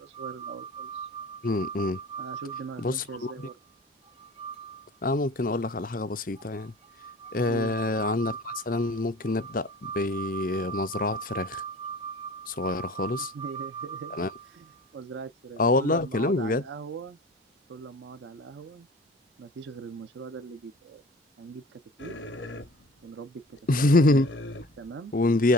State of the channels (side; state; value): both; normal; correlation 0.42